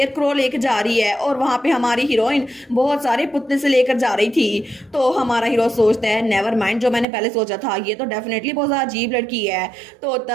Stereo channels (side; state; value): left; drops out; at 7.1 s